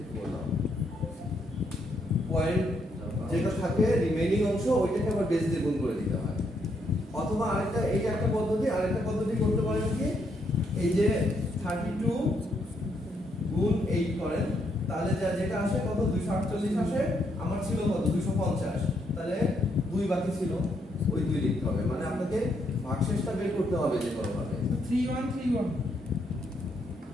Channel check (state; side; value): normal; both; correlation 0.75